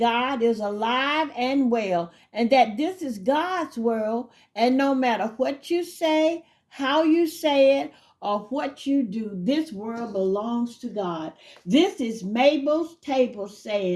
is alive and well, and that this is God's world. And no matter what you say, how you say it, or what you do, this world belongs to God. This is Mabel's Table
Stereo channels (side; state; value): both; identical; correlation 1.00